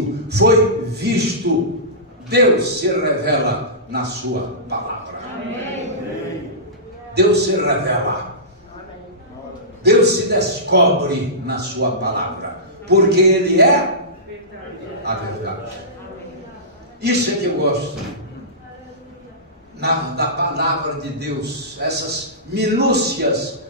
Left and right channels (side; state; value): both; normal; correlation -0.19